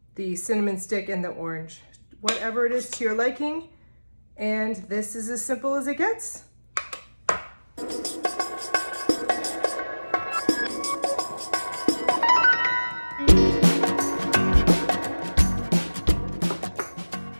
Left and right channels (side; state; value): both; inverted; correlation -1.00